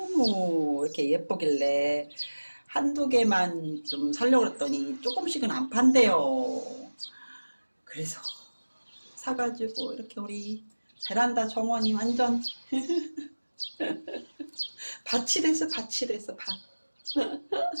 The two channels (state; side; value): inverted; both; correlation -1.00